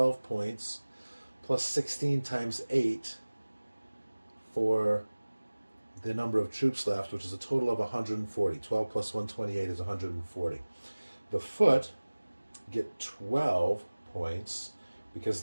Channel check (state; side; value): inverted; both; correlation -1.00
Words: points, plus 16 times 8 for the number of troops left, which is a total of 140. 12 plus 128 is 140. The foot get 12 points because